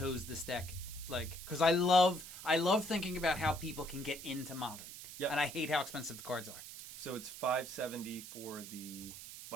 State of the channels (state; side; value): noise; right; hiss, 12 dB below the sound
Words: this deck, like, because I love thinking about how people can get into Modern. Yep. And I hate how expensive the cards are. So it's $570 for the...